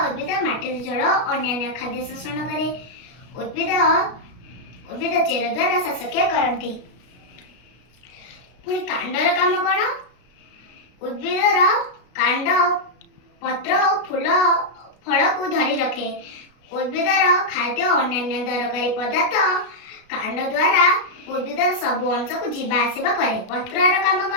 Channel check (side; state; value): right; late; 33 ms